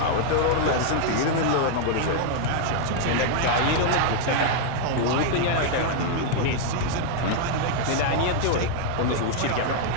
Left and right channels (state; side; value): different; both; correlation 0.00